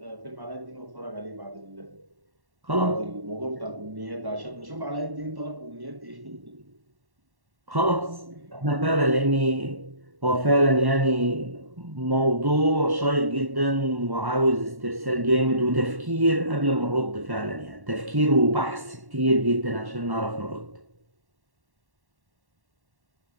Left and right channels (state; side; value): late; left; 1.1 ms